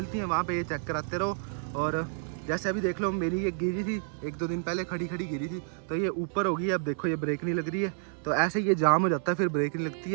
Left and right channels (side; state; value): left; silent; 58 dB below the other